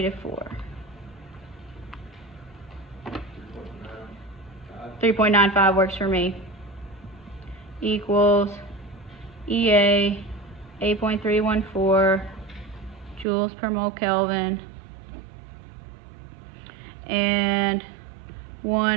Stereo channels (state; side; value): drops out; left; at 13.2 s